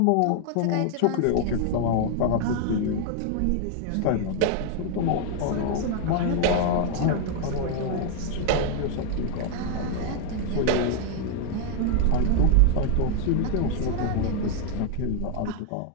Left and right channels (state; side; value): different; both; correlation 0.00